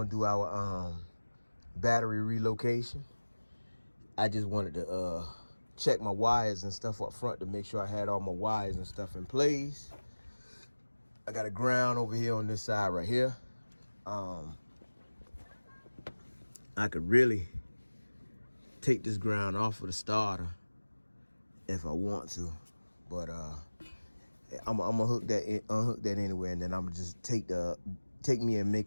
do our battery relocation. I just wanted to check my wires and stuff up front to make sure I had all my wires and stuff in place. I got a ground over here on this side right here. I could really take this ground off of the starter if I want to, but I'm gonna hook that, unhook that anyway, and then I'm gonna just take me and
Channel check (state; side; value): inverted; both; correlation -1.00